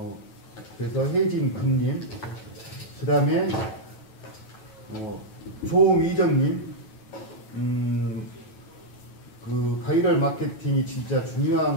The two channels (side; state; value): right; late; 9.2 ms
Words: 그래서 혜진 금님, 그 다음에 조미정님, 디지털 마케팅이 진짜